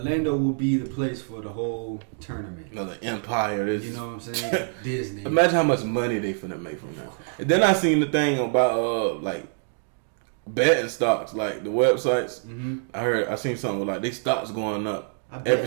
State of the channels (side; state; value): left; silent; 61 dB below the other